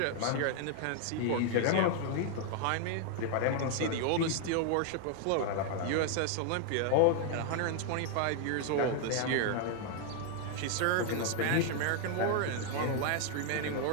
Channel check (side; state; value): both; different; correlation 0.00